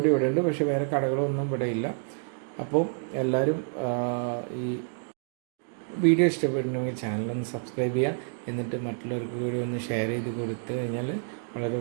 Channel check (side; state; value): left; silent; 56 dB below the other